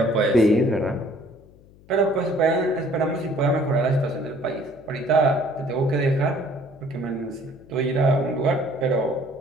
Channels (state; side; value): noise; left; hum, 25 dB below the sound